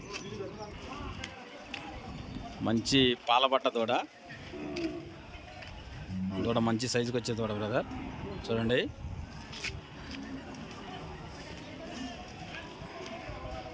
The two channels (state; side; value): identical; both; correlation 1.00